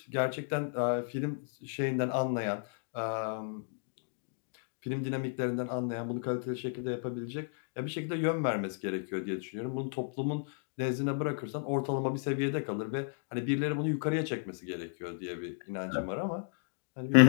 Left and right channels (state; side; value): silent; right; digital silence